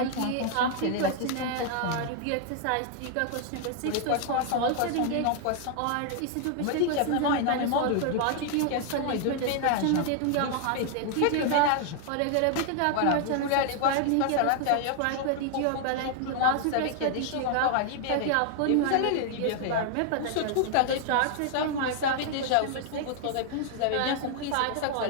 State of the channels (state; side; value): different; both; correlation 0.00